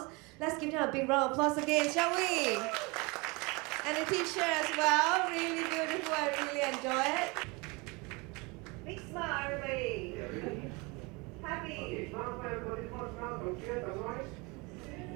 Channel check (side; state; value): left; quieter; 27.1 dB